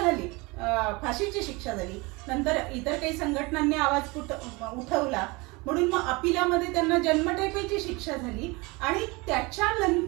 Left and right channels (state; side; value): quieter; left; 25.5 dB